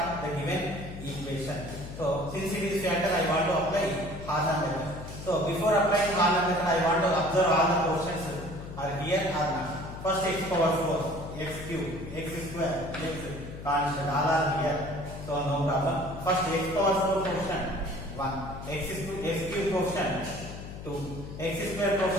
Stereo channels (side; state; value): left; noise; hum, 11 dB below the sound